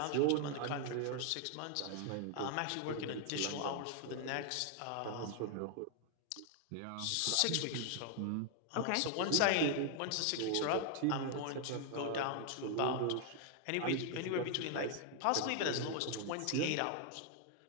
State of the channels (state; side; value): different; both; correlation 0.00